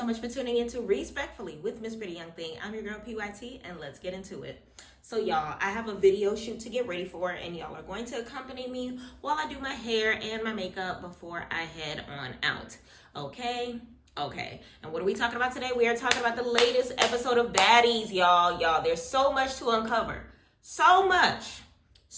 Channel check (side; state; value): both; identical; correlation 1.00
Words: much for tuning in to Respectfully with Miss Pretty Young Thing. I'm your girl PYT, and let's get into it. So y'all, I have a video shoot to get ready for, and y'all are going to accompany me while I do my hair and my makeup before I head on out. Okay, and what are we talking about today? We are talking about the latest episode of Baddies, y'all. There's so much to uncover, so much